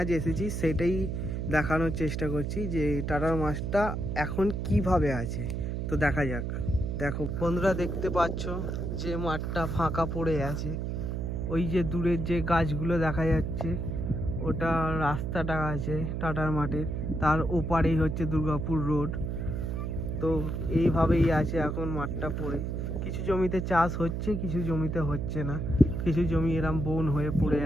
এসেছি, সেটাই দেখানোর চেষ্টা করছি যে টাটার মাঠটা এখন কিভাবে আছে। তো দেখা যাক। দেখো বন্ধুরা, দেখতে পাচ্ছ যে মাঠটা ফাঁকা পড়ে আছে। ওই যে দূরের যে গাছগুলো দেখা যাচ্ছে, ওটা রাস্তাটা আছে টাটার মাঠের। তার ওপারেই হচ্ছে দুর্গাপুর রোড। তো এইভাবেই আছে এখন মাঠটা পড়ে। কিছু জমিতে চাষ হচ্ছে, কিছু জমিতে হচ্ছে না। কিছু জমি এরম বন হয়ে পড়ে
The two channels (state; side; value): noise; right; hum, 2 dB below the sound